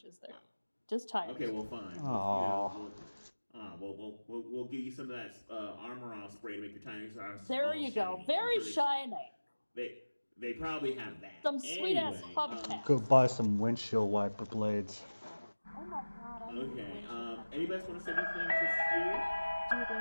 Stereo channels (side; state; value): both; inverted; correlation -1.00